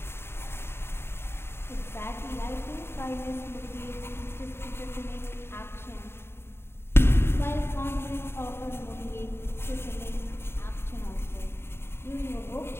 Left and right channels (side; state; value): right; late; 0.11 ms